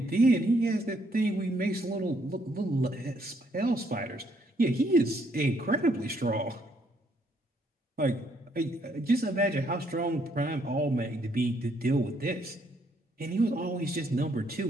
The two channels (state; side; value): normal; both; correlation 0.70